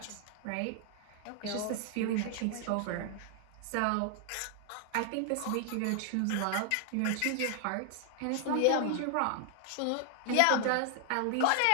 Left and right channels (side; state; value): both; different; correlation 0.00